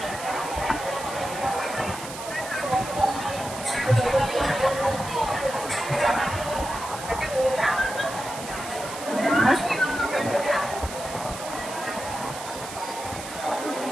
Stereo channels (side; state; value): right; noise; hiss, 11 dB below the sound